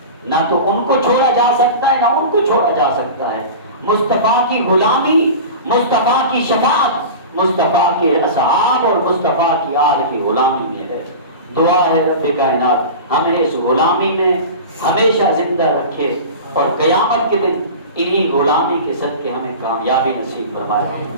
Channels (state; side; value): inverted; both; correlation -0.32